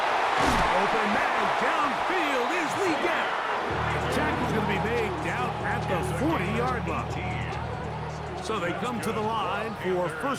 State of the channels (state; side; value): identical; both; correlation 1.00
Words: Open man. Downfield is Lee Gap. The tackle's going to be made down at the 40-yard line. So they come to the line for